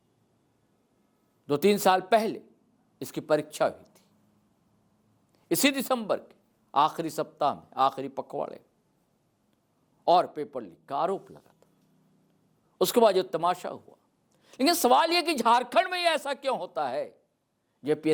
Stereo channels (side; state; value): both; identical; correlation 1.00